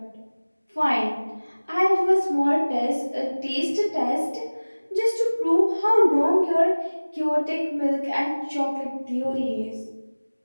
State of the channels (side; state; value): both; inverted; correlation -1.00